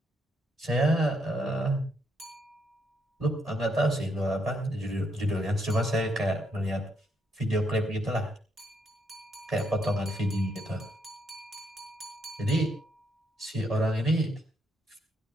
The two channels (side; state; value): both; normal; correlation 0.75